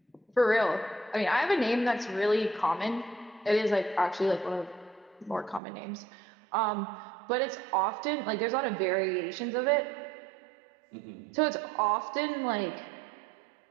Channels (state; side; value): drops out; left; at 5.6 s